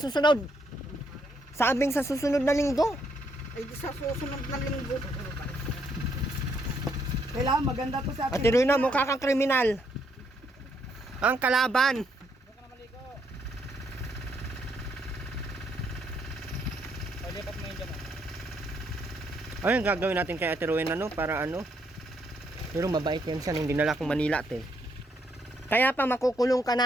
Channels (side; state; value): both; normal; correlation 0.73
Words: Sabing sa susunod na linggo. Ay, di sa susunod na linggo. Kailangan maganda to sa atin. At tinuloy na, mukha kang kriminal. Ang kalaban. Ayun, gagawin natin kay Ate Rowena, no? Para ano? Pero mabait yan siya, hindi nala akong Manila, te. Kaya pa makukulong ka